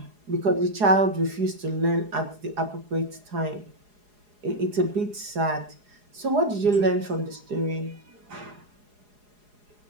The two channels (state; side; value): late; left; 4.8 ms